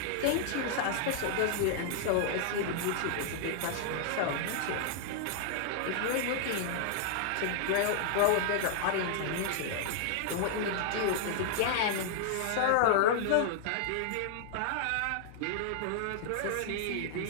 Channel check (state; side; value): different; both; correlation -0.01